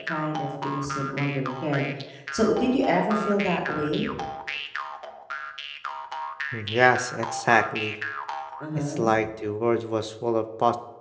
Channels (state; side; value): identical; both; correlation 1.00